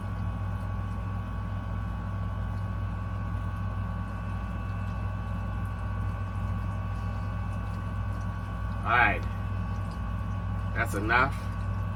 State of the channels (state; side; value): identical; both; correlation 1.00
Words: All right. That's enough.